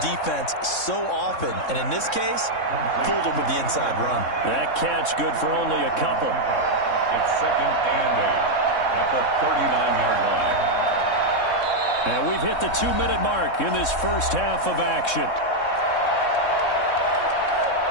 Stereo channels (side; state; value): right; late; 3.6 ms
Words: defense so often. And in this case, fooled them with the inside run. That catch good for only a couple. It's 2nd and 8 at the 39-yard line. And we've hit the 2-minute mark in this first half of action.